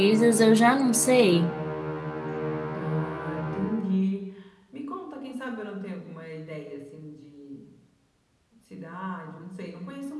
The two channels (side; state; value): both; identical; correlation 1.00